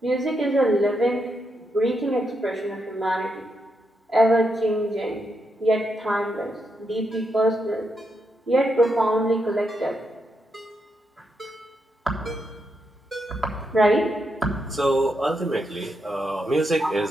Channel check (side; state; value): both; normal; correlation 0.82